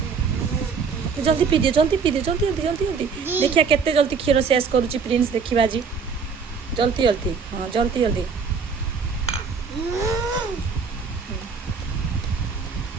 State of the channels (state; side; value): quieter; left; 5.6 dB